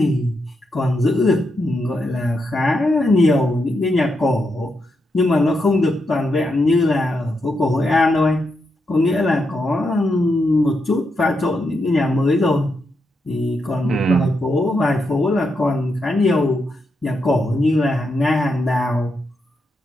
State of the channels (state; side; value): normal; both; correlation 0.83